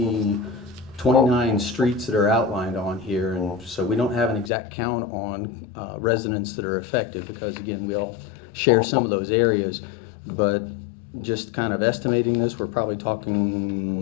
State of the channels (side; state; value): right; drops out; at 4.5 s